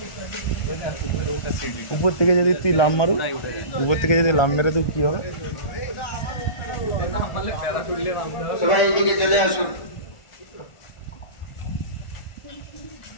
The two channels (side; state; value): right; late; 1.4 ms